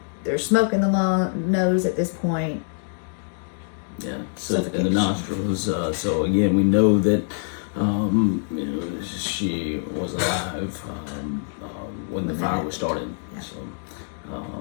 There's smoke in the nose at this point. Yeah, so in the nostrils. So again, we know that she was alive when the fire was started. Yeah. So,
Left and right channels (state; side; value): silent; right; digital silence